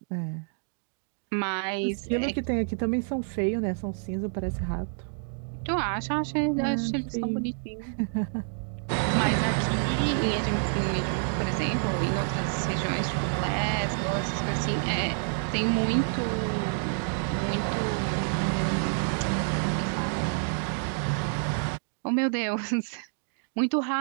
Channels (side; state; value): left; silent; 59 dB below the other